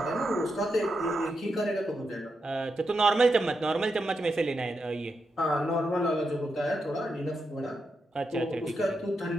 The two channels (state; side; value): normal; both; correlation 0.85